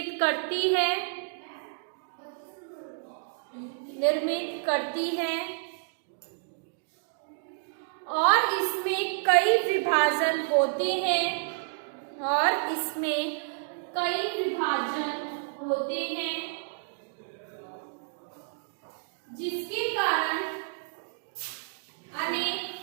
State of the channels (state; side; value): silent; left; digital silence